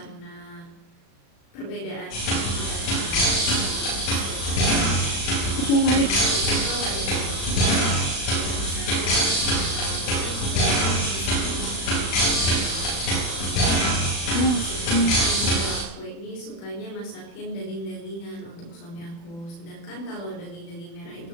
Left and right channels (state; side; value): late; right; 36 ms